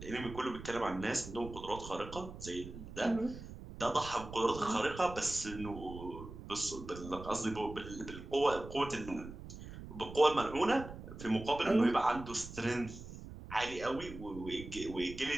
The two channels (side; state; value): right; noise; rumble, 12 dB below the sound